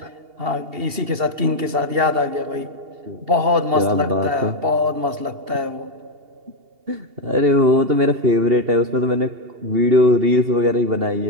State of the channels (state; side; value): late; left; 2.8 ms